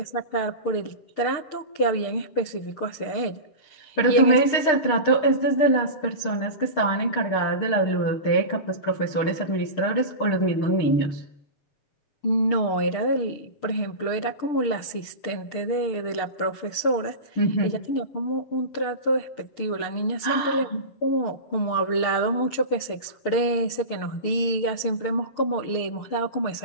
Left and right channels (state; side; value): late; right; 6.7 ms